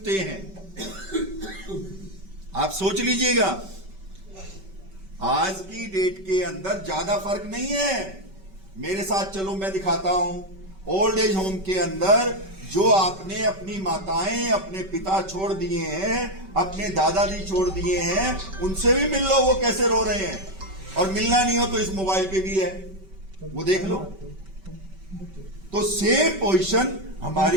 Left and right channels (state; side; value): late; left; 5.2 ms